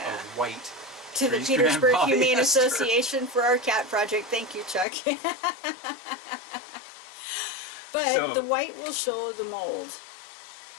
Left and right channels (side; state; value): right; drops out; at 4.9 s